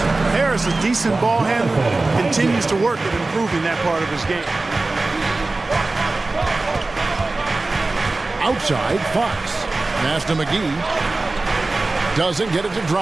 Harris, a decent ball handler, continues to work at improving that part of his game. Outside, Fox. Pass to McGee. Doesn't get it to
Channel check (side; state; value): left; quieter; 3.3 dB